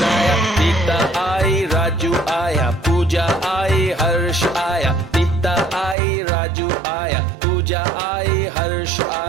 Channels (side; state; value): left; drops out; at 6.0 s